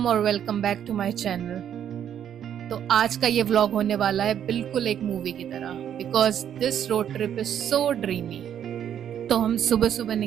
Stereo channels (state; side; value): quieter; left; 9.5 dB